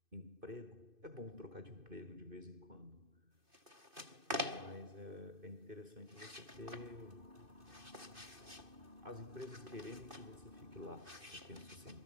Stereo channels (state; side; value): late; left; 2.6 ms